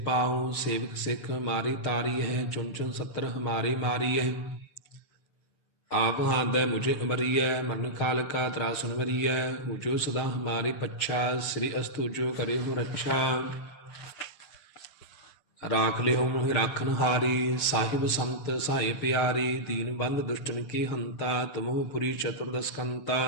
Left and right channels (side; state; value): right; late; 6.8 ms